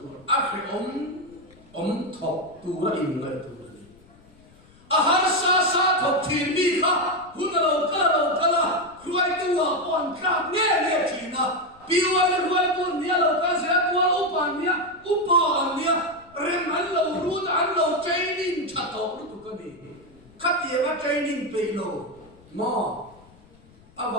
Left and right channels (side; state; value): left; noise; rumble, 27 dB below the sound